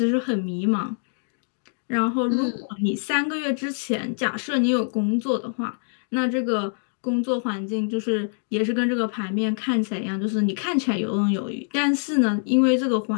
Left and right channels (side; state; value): right; silent; digital silence